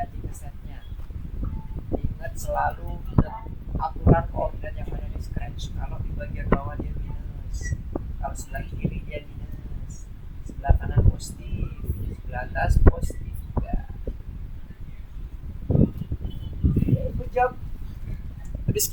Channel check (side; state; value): both; identical; correlation 1.00